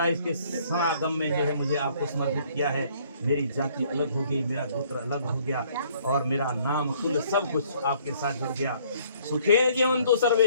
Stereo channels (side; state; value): both; inverted; correlation -0.61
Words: है, इसके समागम में जो है मुझे आपको समर्पित किया है। मेरी जाति अलग हो गई, मेरा गोत्र अलग हो गया और मेरा नाम कुल सब कुछ आपके साथ जुड़ गया। सुखे जीवन तो सर्वे,